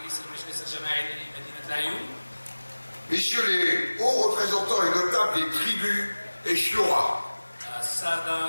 messieurs les hauts représentants et notables des tribus et shura,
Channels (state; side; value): inverted; both; correlation -1.00